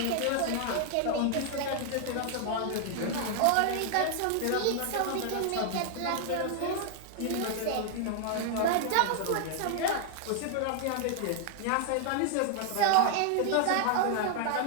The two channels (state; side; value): different; both; correlation 0.00